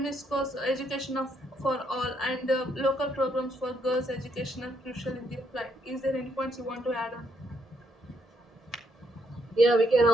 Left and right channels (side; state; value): both; normal; correlation 0.74